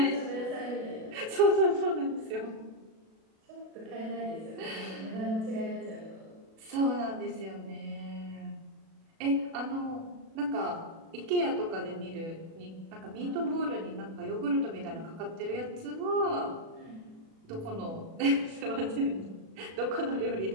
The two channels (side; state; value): left; late; 37 ms